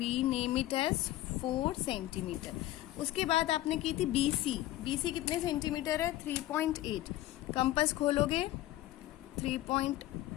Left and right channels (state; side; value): quieter; right; 15.3 dB